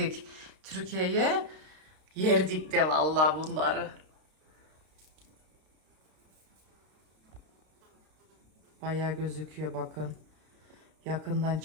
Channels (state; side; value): late; left; 32 ms